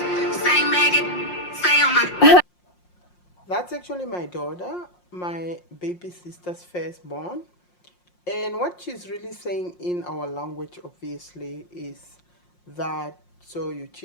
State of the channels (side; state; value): right; late; 5.6 ms